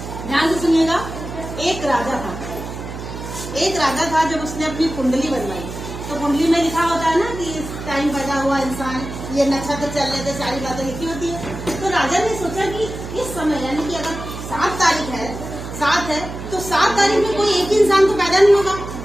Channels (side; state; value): right; noise; hum, 9 dB below the sound